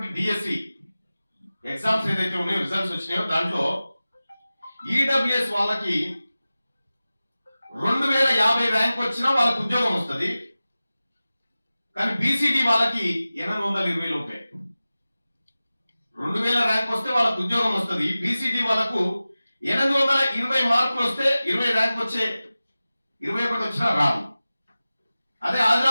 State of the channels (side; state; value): both; inverted; correlation -0.96